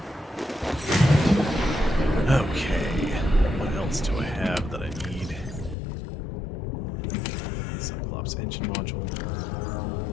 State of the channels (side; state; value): right; drops out; at 5.8 s